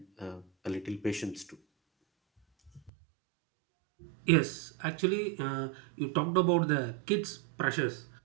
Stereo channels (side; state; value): left; drops out; at 2.9 s